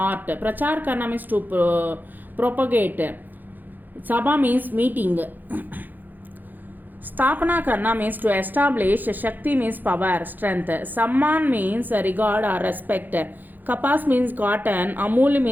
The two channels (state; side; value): late; left; 0.086 ms